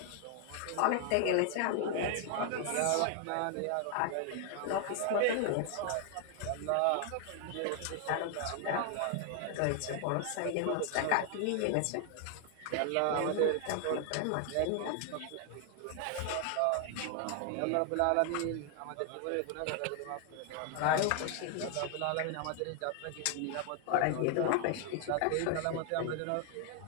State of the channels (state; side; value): different; both; correlation 0.00